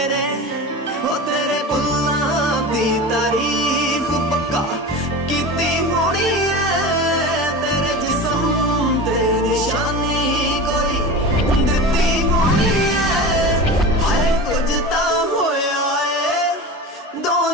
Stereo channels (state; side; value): normal; both; correlation 0.29